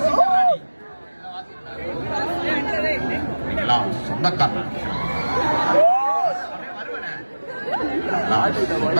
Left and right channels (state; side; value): inverted; both; correlation -1.00